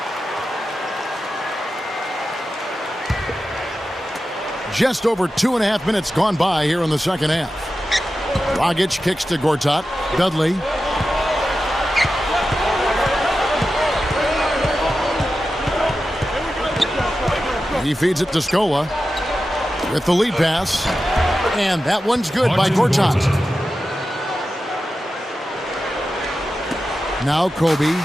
Just over 2.5 minutes gone by here in the second half. Dragic kicks to Gortat. Dudley. He feeds it to Scola with the lead pass. And that one's good by Gortat. Now Kobe.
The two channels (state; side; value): normal; both; correlation 0.92